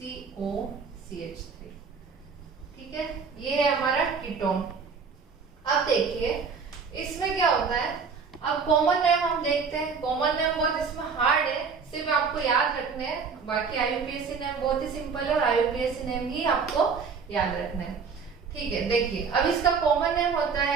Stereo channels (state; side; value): quieter; left; 5.6 dB